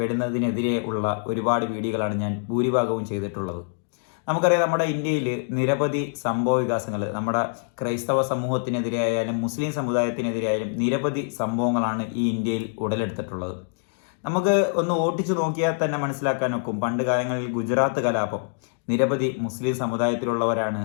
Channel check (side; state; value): right; silent; digital silence